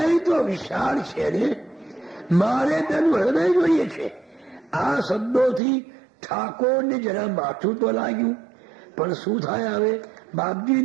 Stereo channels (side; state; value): left; drops out; at 5.6 s